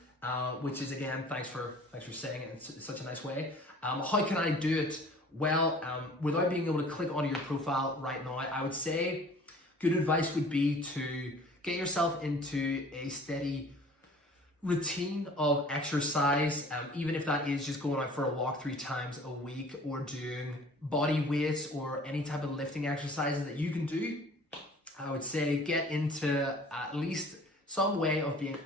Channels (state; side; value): normal; both; correlation 0.48